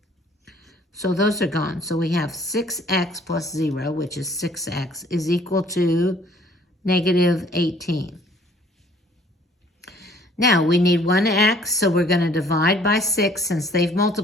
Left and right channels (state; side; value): normal; both; correlation 0.57